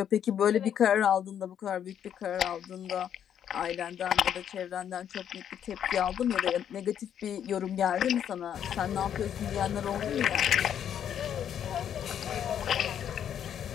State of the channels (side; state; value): right; quieter; 9.3 dB